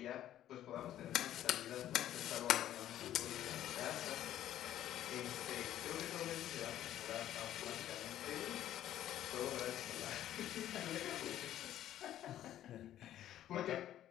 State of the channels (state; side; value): quieter; right; 12.2 dB